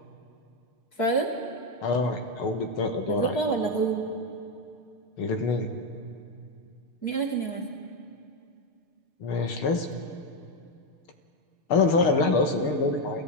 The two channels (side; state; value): right; late; 6.6 ms